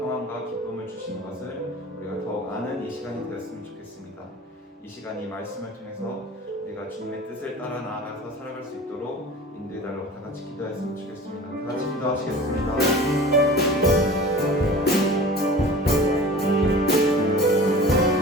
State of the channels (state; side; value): normal; both; correlation 0.39